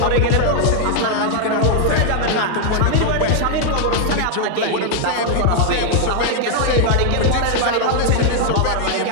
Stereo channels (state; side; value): different; both; correlation 0.00